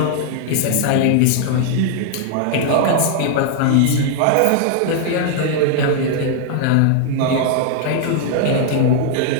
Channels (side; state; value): both; different; correlation 0.00